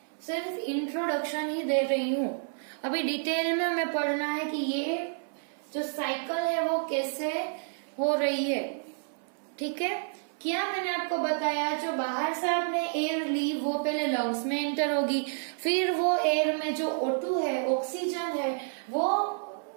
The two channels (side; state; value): left; silent; 58 dB below the other